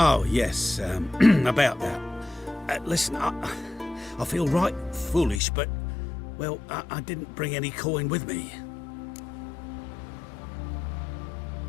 yes, about that. Listen, I feel right foolish, but, well, I didn't bring any coin with me.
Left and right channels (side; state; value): right; drops out; at 5.4 s